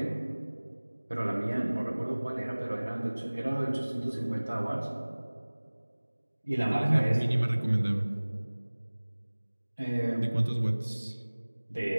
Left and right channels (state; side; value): inverted; both; correlation -1.00